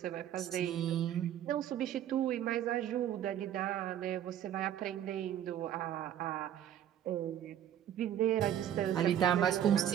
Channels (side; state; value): left; quieter; 10.7 dB